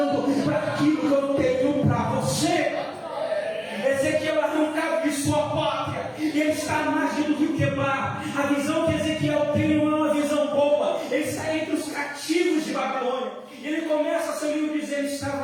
para aquilo que eu tenho para você. Ezequiel é arrancado de sua pátria e ele está à margem do rio Quebar. A visão que Ezequiel tem não é uma visão boa. Ele está entre os cativos de Babilônia. E ele começa seu livro dizendo:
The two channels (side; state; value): both; identical; correlation 1.00